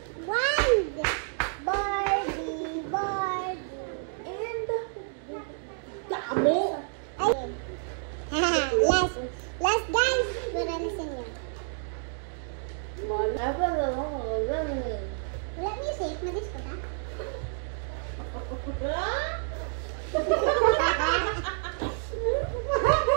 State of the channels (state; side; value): silent; left; 59 dB below the other